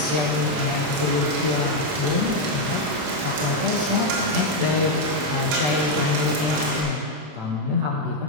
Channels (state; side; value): late; left; 27 ms